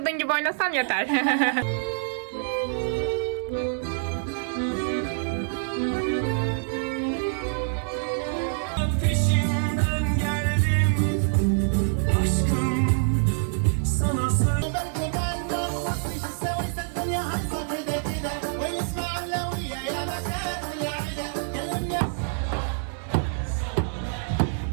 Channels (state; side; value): silent; left; digital silence